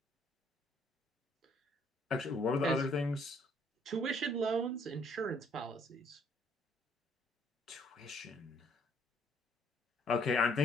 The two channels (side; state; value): both; normal; correlation 0.64